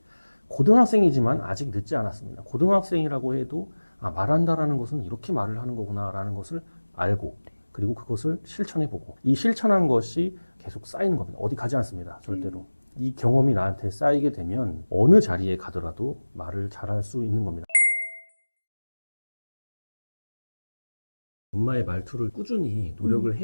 고등학생이지만 아직 늦지 않았습니다. 고등학생이라고 해도 말한다라는 것은 이렇게 말을 하는 거구나라는 것을 알고 그리고 그것을 실천해보고 이 실천한 것이 계속 쌓이는 겁니다. 어디 가지 않습니다. 절대로. 이 경험이 나한테 쌓이게 되면 어느 자리에 가더라도 말을 잘할 수 있는 겁니다. 엄마의 말투를 꾸준히 노력을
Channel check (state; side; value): inverted; both; correlation -1.00